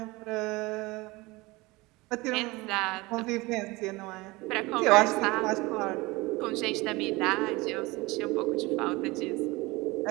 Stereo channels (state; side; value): quieter; left; 22.5 dB